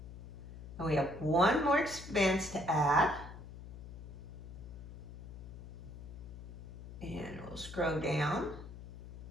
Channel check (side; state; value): left; noise; hum, 12 dB below the sound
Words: And we have one more expense to add. And we'll scroll down.